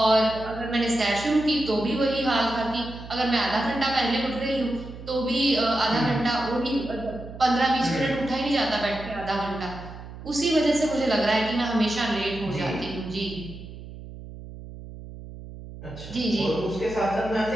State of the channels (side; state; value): right; noise; hum, 13 dB below the sound